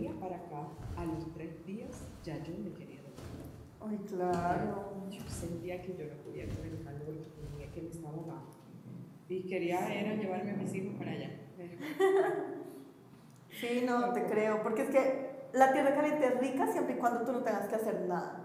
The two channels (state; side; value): identical; both; correlation 1.00